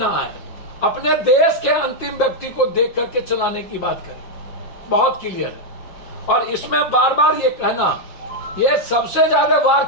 आए, अपने देश के अंतिम व्यक्ति को देख करके चलाने की बात करें। बहुत क्लियर है। और इसमें बार बार ये कहना, ये सबसे ज्यादा वार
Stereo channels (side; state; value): right; late; 5.5 ms